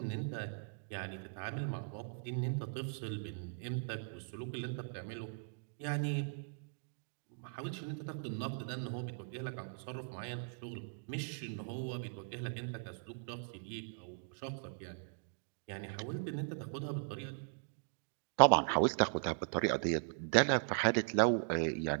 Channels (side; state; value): left; silent; digital silence